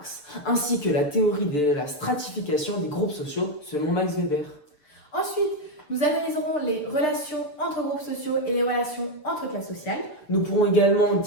ainsi que la théorie de la stratification des groupes sociaux selon Max Weber. Ensuite, nous analyserons les relations entre groupes sociaux et les relations entre classes sociales. Nous pourrons également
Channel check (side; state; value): right; late; 6.8 ms